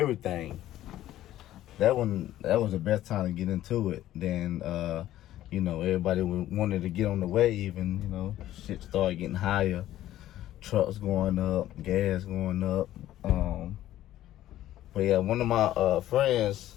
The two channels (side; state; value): right; quieter; 13.5 dB